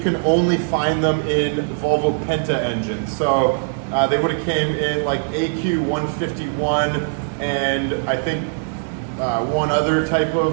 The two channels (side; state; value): left; silent; digital silence